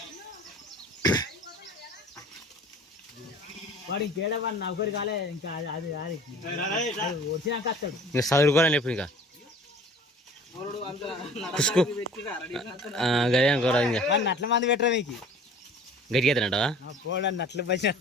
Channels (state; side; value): normal; both; correlation 0.46